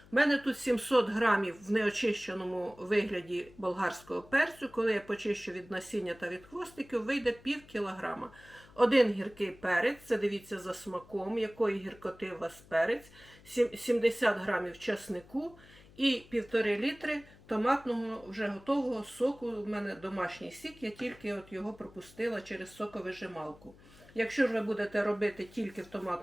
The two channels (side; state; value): left; noise; hum, 24 dB below the sound